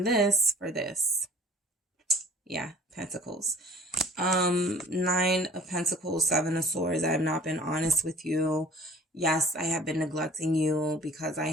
this for this. Yeah, Pentacles. 9 of Pentacles, 7 of Swords. I have not been honest with you. Yes, I have been neglecting you because I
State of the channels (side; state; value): both; normal; correlation 0.50